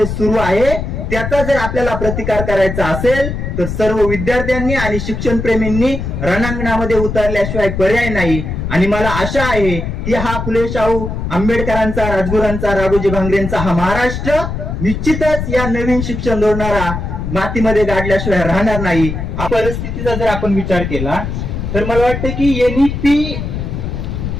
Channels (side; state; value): left; noise; rumble, 4 dB below the sound